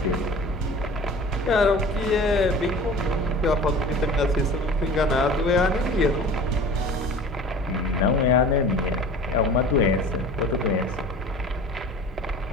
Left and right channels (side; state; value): both; normal; correlation 0.41